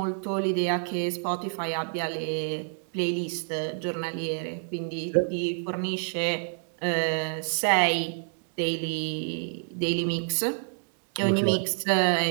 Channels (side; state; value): left; silent; 59 dB below the other